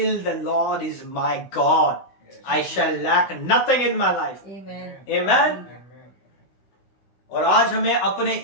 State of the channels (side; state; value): right; late; 16 ms